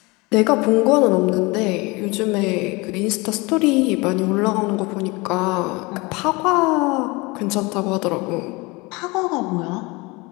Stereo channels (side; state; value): right; quieter; 25.2 dB